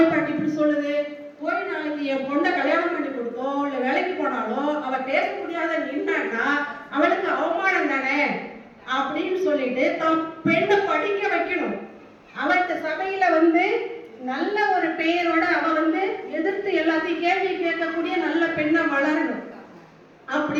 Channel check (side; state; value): both; identical; correlation 1.00